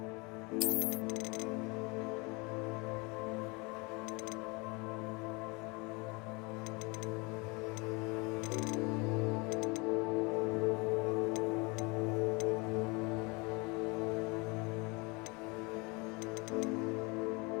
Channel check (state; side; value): quieter; right; 28.0 dB